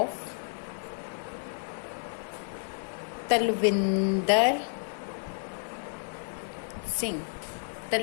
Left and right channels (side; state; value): right; silent; digital silence